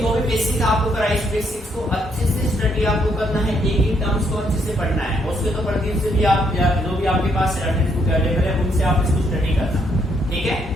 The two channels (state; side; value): normal; both; correlation 0.72